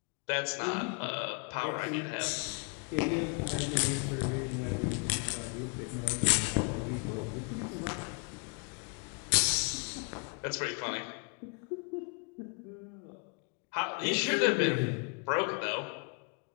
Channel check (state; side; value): quieter; right; 35.9 dB